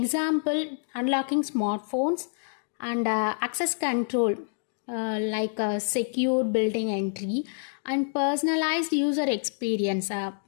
unlocking smartphones and access control like secure building entry and personalized user experience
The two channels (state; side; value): silent; right; digital silence